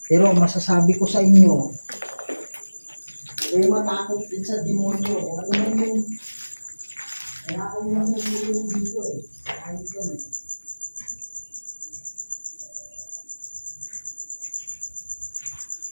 Pero masasabi ko sa inyo, huwag matakot din sa demonyo. Kung ano man yung kaya ako yung nangulong dito eh. Ayos yan eh.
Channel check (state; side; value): inverted; both; correlation -1.00